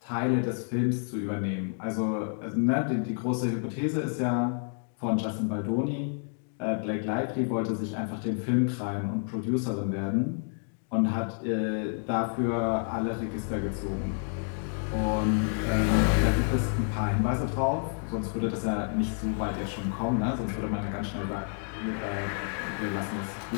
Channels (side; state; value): right; silent; 55 dB below the other